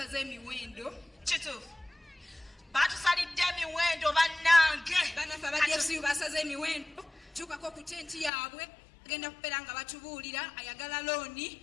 emiwendo. Kituufu. Batusalidde emiwendo bannange. Banafe aba DFCU basaze emiwendo. Tukako ku tenti yaabwe agenda kubeera nga batubuulira ayagala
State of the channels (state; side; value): drops out; right; at 8.3 s